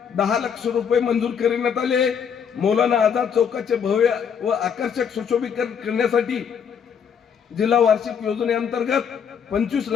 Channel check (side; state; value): right; quieter; 7.3 dB